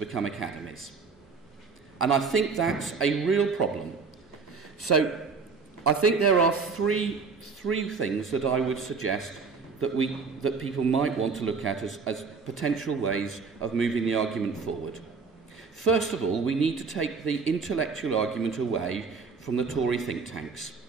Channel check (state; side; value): quieter; left; 4.9 dB